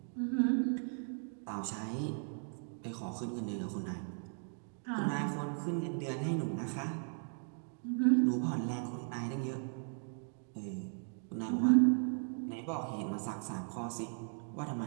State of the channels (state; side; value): silent; left; 53 dB below the other